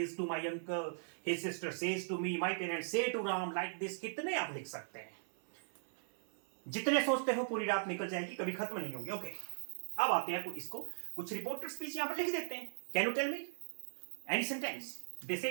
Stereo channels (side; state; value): left; silent; 52 dB below the other